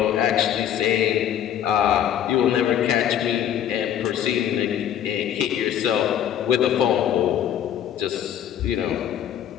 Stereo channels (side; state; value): right; quieter; 10.1 dB